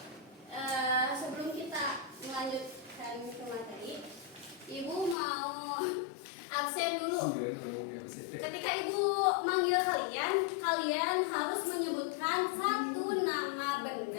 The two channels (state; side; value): drops out; right; at 5.2 s